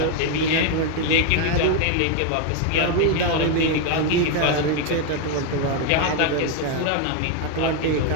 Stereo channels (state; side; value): different; both; correlation 0.01